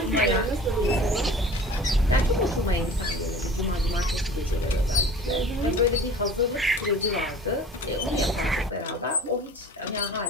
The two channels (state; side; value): normal; both; correlation 0.43